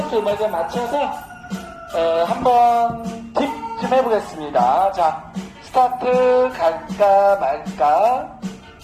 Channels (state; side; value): identical; both; correlation 1.00